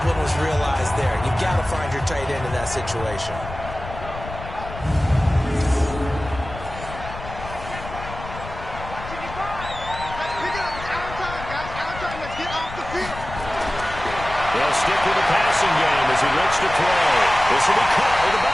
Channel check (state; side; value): noise; left; rumble, 11 dB below the sound